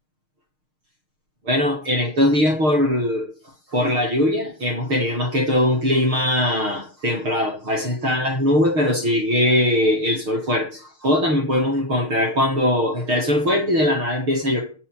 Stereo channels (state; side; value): late; left; 6.5 ms